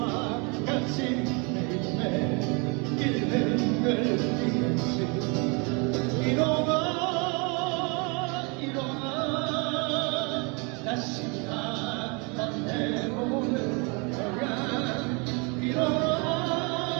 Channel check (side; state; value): left; quieter; 32.2 dB